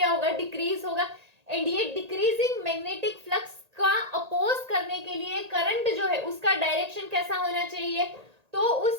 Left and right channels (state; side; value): late; left; 1.8 ms